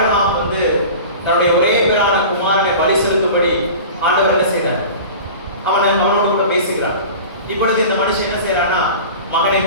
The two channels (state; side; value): inverted; both; correlation -0.36